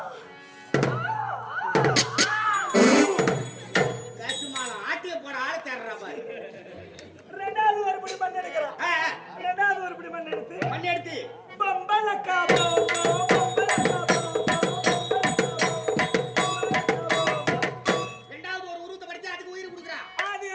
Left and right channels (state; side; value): identical; both; correlation 1.00